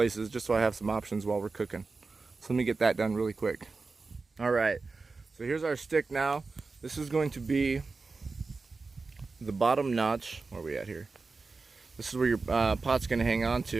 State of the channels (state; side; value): quieter; left; 4.1 dB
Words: just so I have some options while we're cooking. So let me get that done really quick. Alright, so here's our stick now. This is going to be the bottom notch. Where are we at here? This is where your pot's going to hang on